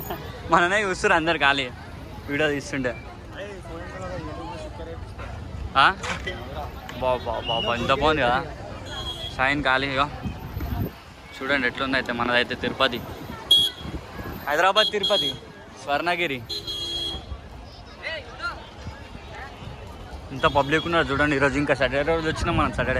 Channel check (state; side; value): identical; both; correlation 1.00